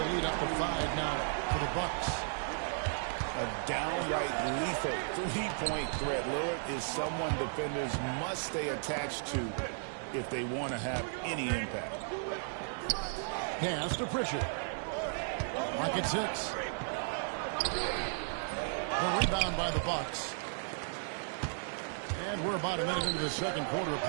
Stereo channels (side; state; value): left; silent; digital silence